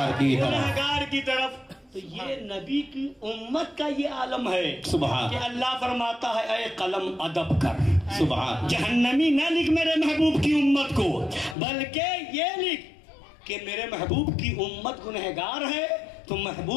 کی طرف. تو یہ نبی کی امت کا یہ عالم ہے کہ اللہ فرماتا ہے اے قلم ادب کر. جہنمی نہ لکھ میرے محبوب کی امت کو، بلکہ یہ لکھ کہ میرے محبوب کی امت گنہگار ہے تو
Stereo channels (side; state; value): right; drops out; at 11.6 s